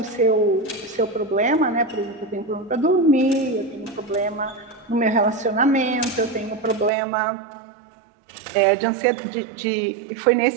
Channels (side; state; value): left; drops out; at 6.9 s